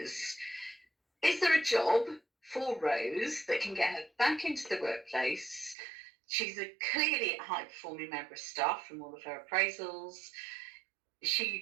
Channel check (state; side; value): drops out; left; at 5.8 s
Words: there a job for Rose that can get her back into the workplace? She's a clearly high-performing member of staff from all of her appraisals.